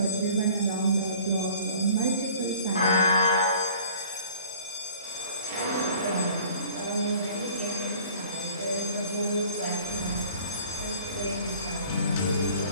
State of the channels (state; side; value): inverted; both; correlation -0.50